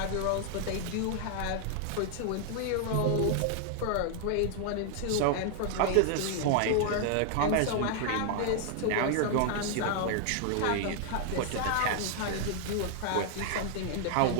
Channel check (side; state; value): both; different; correlation 0.00